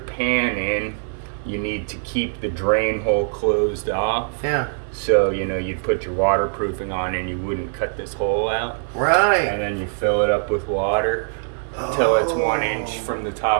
in, you need to keep the drain hole closed off. Yeah. So, you'd put your waterproofing on and you wouldn't cut this hole out. Right. And then you fill it up with water until it's 1 inch from the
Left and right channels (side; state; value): left; silent; digital silence